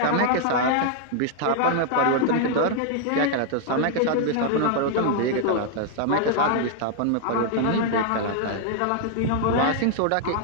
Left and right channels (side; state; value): both; different; correlation 0.00